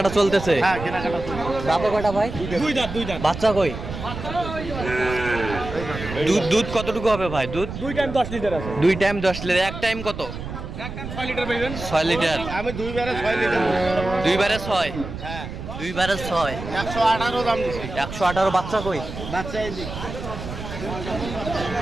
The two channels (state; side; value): noise; right; rumble, 9 dB below the sound